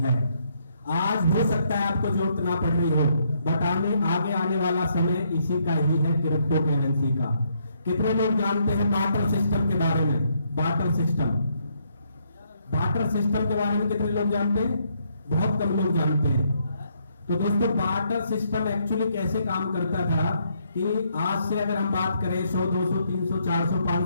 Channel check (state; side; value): inverted; both; correlation -0.73